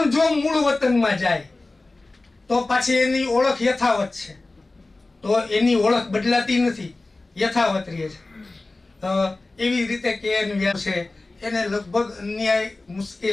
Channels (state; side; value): quieter; right; 3.2 dB